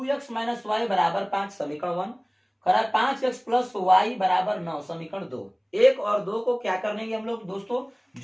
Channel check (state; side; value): identical; both; correlation 1.00